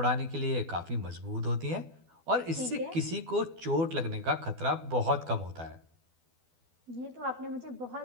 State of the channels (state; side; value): late; left; 12 ms